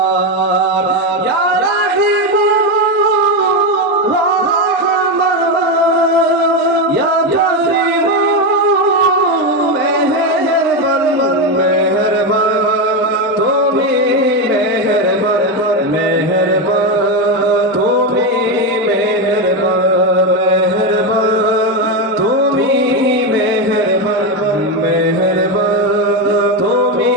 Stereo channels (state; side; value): normal; both; correlation 0.11